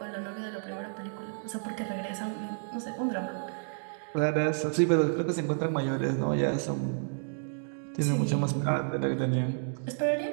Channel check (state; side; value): silent; left; digital silence